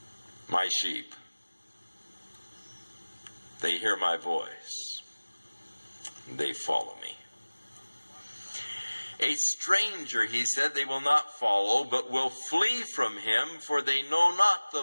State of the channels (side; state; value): both; inverted; correlation -1.00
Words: My sheep, they hear my voice. They follow me. A stranger, he said, they will not follow, but will flee from him, for they know not